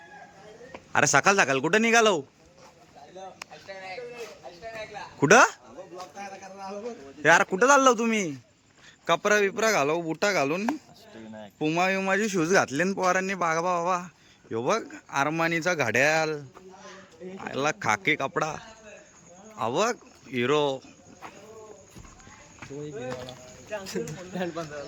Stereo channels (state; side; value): identical; both; correlation 1.00